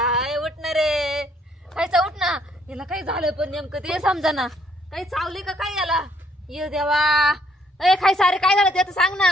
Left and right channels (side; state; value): both; normal; correlation 0.67